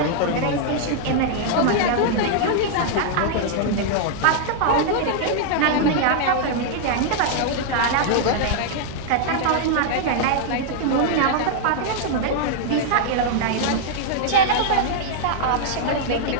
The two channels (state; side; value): different; both; correlation -0.01